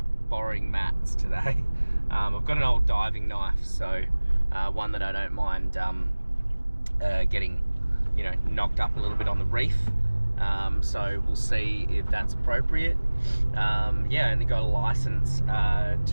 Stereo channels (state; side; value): inverted; both; correlation -1.00